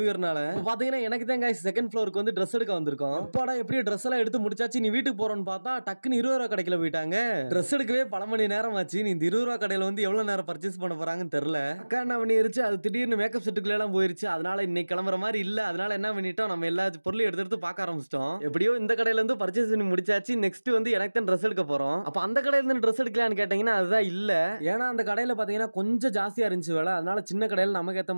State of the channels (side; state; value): both; inverted; correlation -1.00